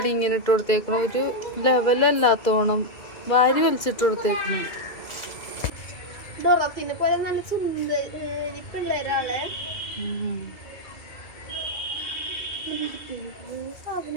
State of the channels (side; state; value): right; late; 2.4 ms